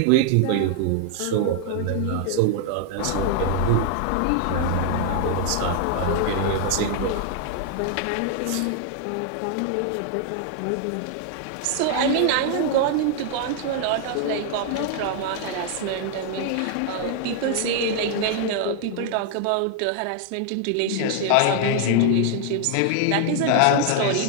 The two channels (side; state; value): both; different; correlation 0.00